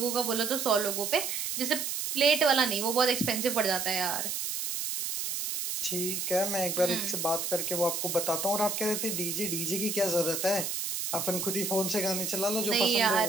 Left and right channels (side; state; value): right; noise; hiss, 2 dB below the sound